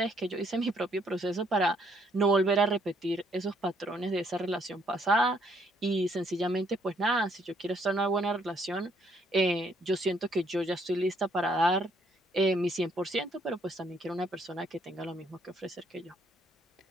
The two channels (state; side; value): normal; both; correlation 0.68